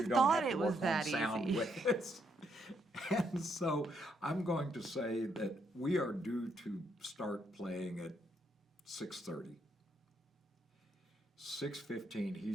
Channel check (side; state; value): both; normal; correlation 0.75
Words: don't thought have to it was work that on sound easy. with us. And so I'm going to say that we are due to start playing at 6:30. 6:15,